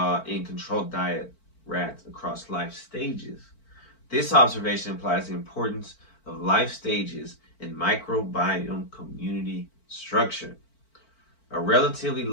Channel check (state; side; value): late; right; 4.5 ms